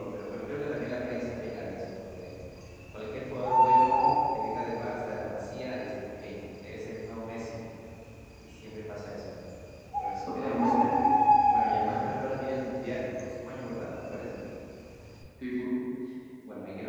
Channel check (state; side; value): identical; both; correlation 1.00